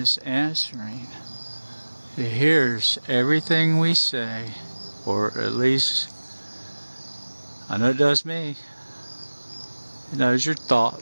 answering. It hears everything we say, or at least I know it does me. It knows your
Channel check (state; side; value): inverted; both; correlation -1.00